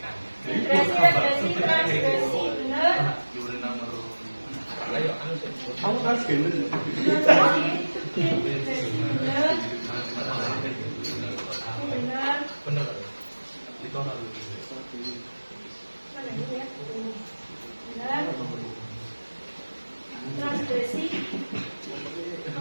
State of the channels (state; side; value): inverted; both; correlation -1.00